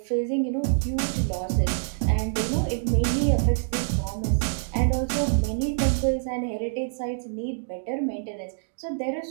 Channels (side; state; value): left; silent; digital silence